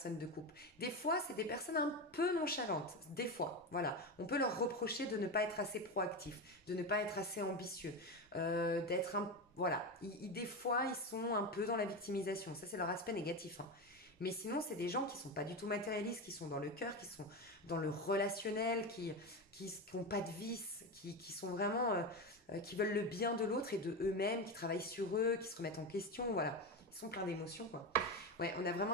de couple. Des fois, c'est des personnes un peu nonchalantes. Des fois, voilà. On peut leur reprocher de ne pas être assez proactifs, de ne pas être assez ambitieux, d'être un... Voilà. Des fois, ils sont un peu dans la victimisation. Ça, c'est leur aspect négatif, hein. Mais sinon, c'est des gens qui sont pas du tout matérialistes, qui sont dans le cœur, qui sont dans le relationnel, qui n'ont pas de vices, qui sont vraiment, qui veulent le bien de l'autre et de eux-mêmes, qui travaillent sur eux, qui se remettent en question, voilà. Ils sont pleins d'émotions, quoi. Ouais, on a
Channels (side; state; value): both; normal; correlation 0.18